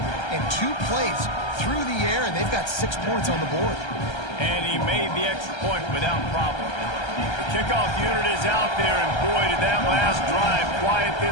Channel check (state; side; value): late; right; 1.3 ms